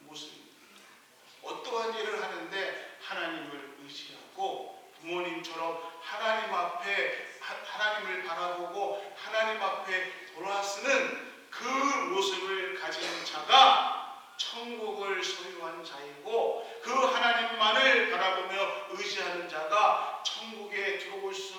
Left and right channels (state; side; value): identical; both; correlation 1.00